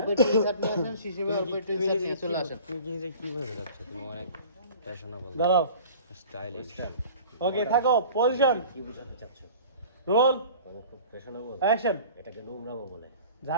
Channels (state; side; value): inverted; both; correlation -0.44